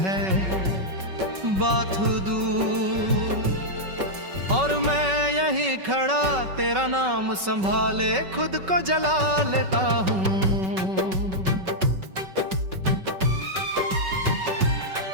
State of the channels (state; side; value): late; left; 5.3 ms